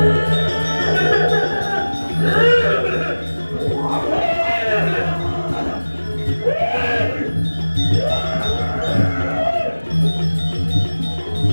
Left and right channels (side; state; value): both; inverted; correlation -1.00